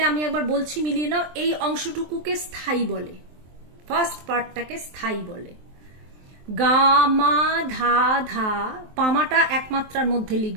আমি একবার বলছি, মিলিয়ে নাও। এই অংশটুকুকে স্থায়ী বলে, ফার্স্ট পার্টটাকে স্থায়ী বলে। গা মা ধা ধা, পামাটা একমাত্রার মধ্যে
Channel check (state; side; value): late; left; 23 ms